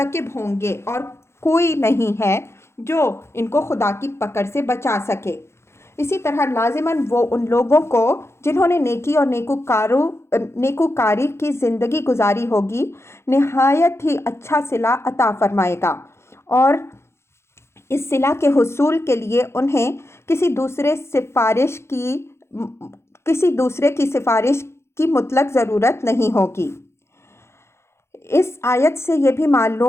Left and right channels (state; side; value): late; right; 0.13 ms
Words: ہوں گے، اور کوئی نہیں ہے جو ان کو خدا کی پکڑ سے بچا سکے۔ اسی طرح لازماً وہ ان لوگوں کو جنہوں نے نیکی اور نیکوکاری کی زندگی گزاری ہوگی نہایت ہی اچھا صلہ عطا فرمائے گا، اور اس صلہ کے حصول کے لیے انہیں کسی دوسرے کی سفارش کی مطلق ضرورت نہیں ہوگی۔ اس آیت سے یہ بھی